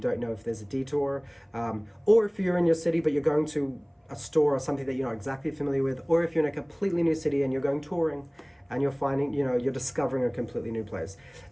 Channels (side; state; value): both; identical; correlation 1.00